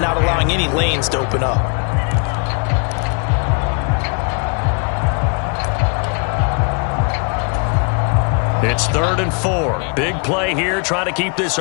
not allowing any lanes to open up. It's 3rd and 4. Big play here, trying to keep this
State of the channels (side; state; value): right; quieter; 35.5 dB